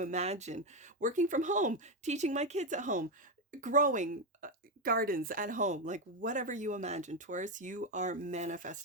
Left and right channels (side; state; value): both; normal; correlation 0.08